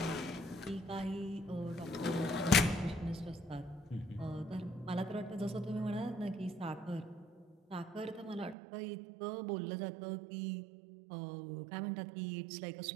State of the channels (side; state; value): left; drops out; at 8.6 s